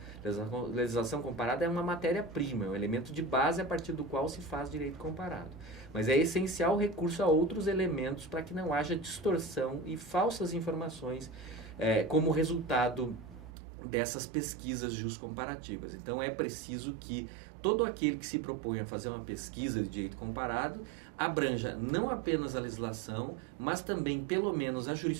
A legislação comparada é uma matéria-prima, é um elemento de base a partir do qual se faz direito comparado. Mas é essencial o recurso a outros elementos para que não haja distorção e falsas informações como resultado dessas pesquisas justcomparativas. Então é preciso que todo aquele que se propõe a fazer uma pesquisa de direito comparado abranja não apenas a legislação, mas também pelo menos a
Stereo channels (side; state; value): left; drops out; at 13.5 s